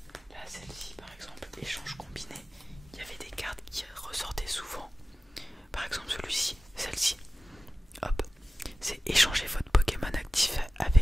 Là celle-ci par exemple, échange combiné, il y avait des cartes qui ressortaient souvent. Par exemple celui-ci, celle-ci, hop, c'est échanger votre Pokémon actif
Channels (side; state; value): both; normal; correlation 0.96